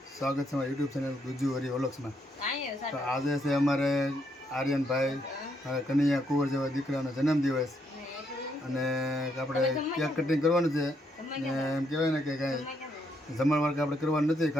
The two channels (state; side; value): normal; both; correlation 0.75